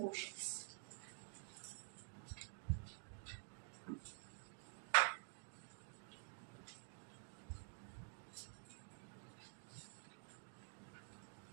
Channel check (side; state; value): left; silent; digital silence